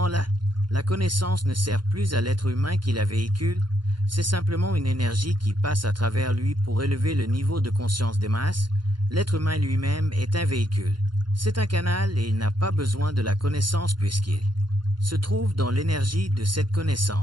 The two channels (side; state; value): left; late; 0.71 ms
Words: la connaissance ne sert plus à l'être humain qui la véhicule, c'est simplement une énergie qui passe à travers lui pour élever le niveau de conscience des masses. L'être humain lui-même est un véhicule. C'est un canal et il n'a pas besoin de la connaissance puisqu'il se trouve dans l'énergie de cette